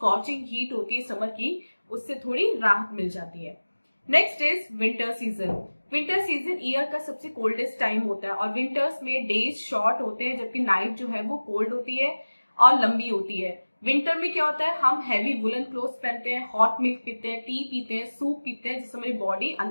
हीट होती है समर की उससे थोड़ी राहत मिल जाती है। Next is winter season. Winter season year का सबसे कोल्डेस्ट टाइम होता है, और विंटर्स में डेज शॉर्ट होते हैं जबकि नाइट जो है वो कोल्ड होती है और लंबी होती है। विंटर में क्या होता है, हम हैवी वुलन क्लोथ्स पहनते हैं, हॉट मिल्क पीते हैं, टी पीते हैं, सूप पीते हैं, जिससे हमारी बॉडी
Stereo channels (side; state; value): both; inverted; correlation -1.00